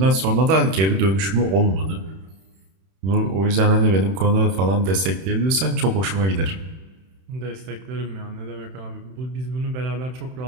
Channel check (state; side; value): late; left; 31 ms